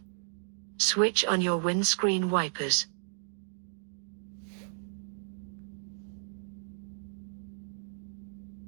Switch on your windscreen wipers.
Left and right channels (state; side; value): silent; left; digital silence